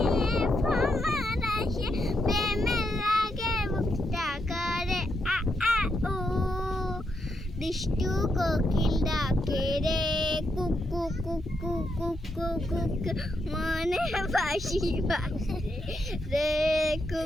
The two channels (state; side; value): normal; both; correlation 0.81